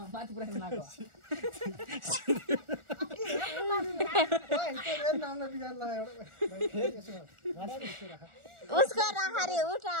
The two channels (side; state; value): left; late; 1.4 ms